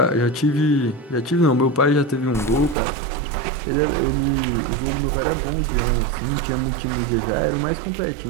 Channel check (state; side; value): drops out; left; at 2.8 s